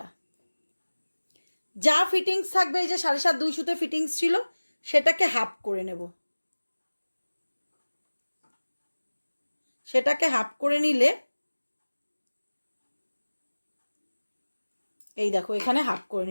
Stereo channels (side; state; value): both; inverted; correlation -1.00